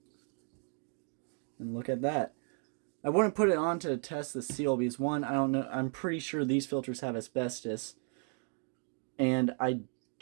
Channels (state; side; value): quieter; left; 39.7 dB